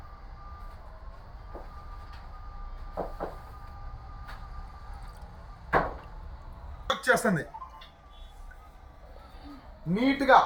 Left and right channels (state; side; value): identical; both; correlation 1.00